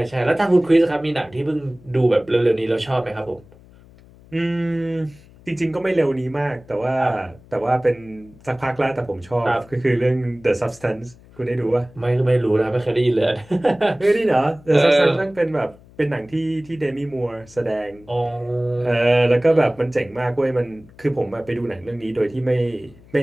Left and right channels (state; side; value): noise; left; hum, 24 dB below the sound